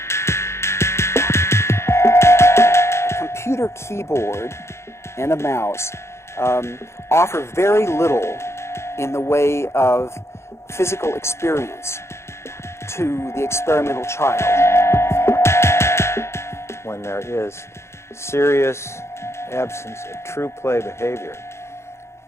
A computer keyboard and a mouse offer very little in the way of physical experience to the experimental child. When there is serious absence of true play behavior,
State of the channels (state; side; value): late; right; 0.13 ms